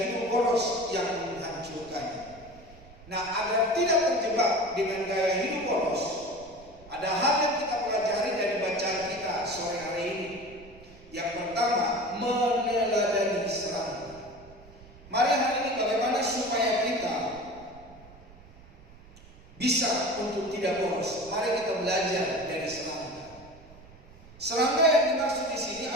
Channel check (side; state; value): right; noise; rumble, 21 dB below the sound